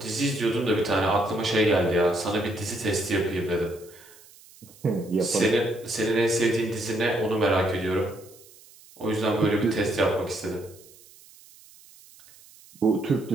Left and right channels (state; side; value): noise; right; hiss, 24 dB below the sound